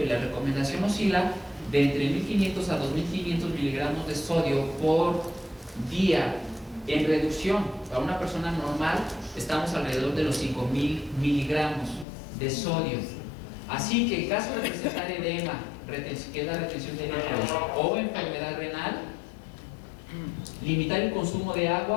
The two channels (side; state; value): right; drops out; at 12.1 s